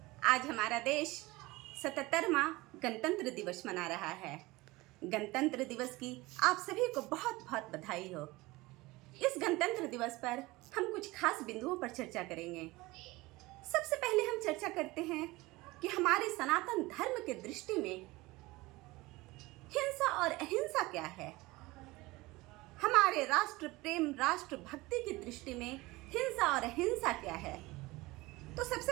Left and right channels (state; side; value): quieter; left; 21.0 dB